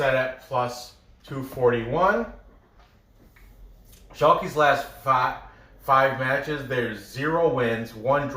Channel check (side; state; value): both; identical; correlation 1.00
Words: at plus 241. Schalke's last 5 matches, there's 0 wins, 1